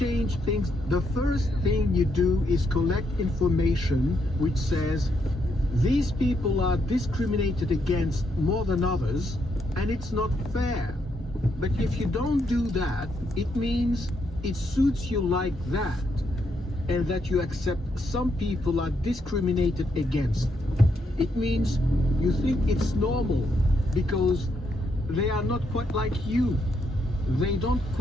things, the first thing you do is collect information which says these people are discriminated against more than others and it's not fair. But if you don't do that, it means it suits you like that, and that you accept some people are discriminated against. It means you think it's normal because they are not quite like you. They don't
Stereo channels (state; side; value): normal; both; correlation 0.78